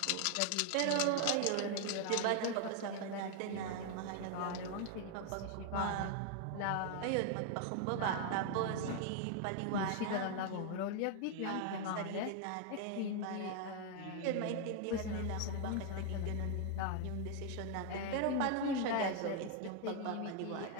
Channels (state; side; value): different; both; correlation 0.00